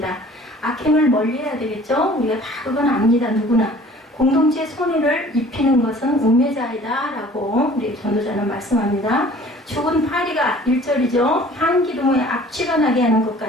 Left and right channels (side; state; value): both; normal; correlation 0.50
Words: 악행을 멀리해야 되겠죠. 우리가 다 그건 압니다. 누구나. 공동체의 손해를 입히는 것은 우매자이다 라고 우리 전도자는 말씀합니다. 죽은 파리가 1절이죠. 향기름에 악취가 나게 하는 것